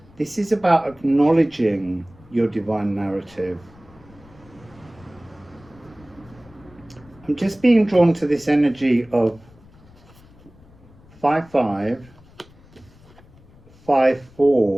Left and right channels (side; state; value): left; noise; rumble, 25 dB below the sound